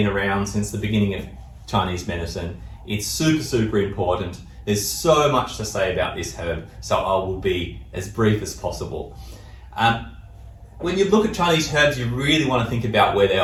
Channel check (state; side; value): identical; both; correlation 1.00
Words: around since the beginning of Chinese medicine. It's super, super important. There's so much to say about this herb, so I will be as brief as possible. When you look at Chinese herbs, you really want to think about where they